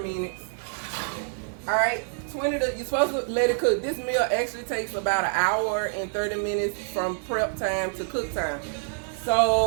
minutes. Alright, you're supposed to let it cook. This meal actually takes about 1 hour and 30 minutes from prep time to cook time.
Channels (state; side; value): silent; left; digital silence